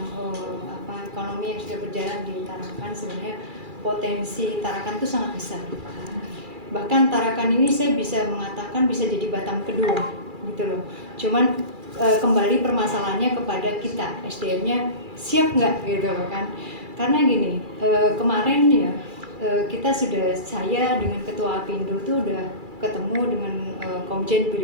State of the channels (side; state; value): left; late; 2.4 ms